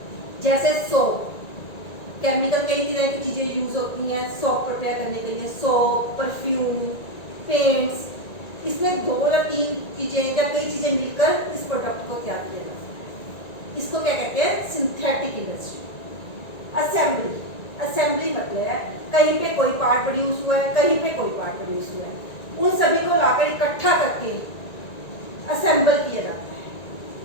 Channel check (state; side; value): late; right; 1.9 ms